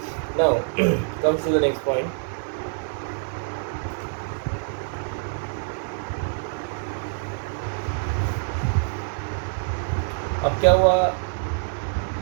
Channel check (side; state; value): left; silent; digital silence